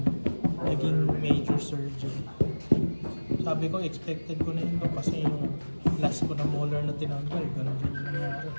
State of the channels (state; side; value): inverted; both; correlation -1.00